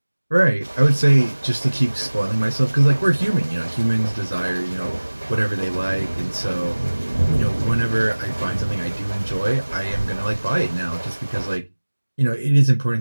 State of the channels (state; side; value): inverted; both; correlation -1.00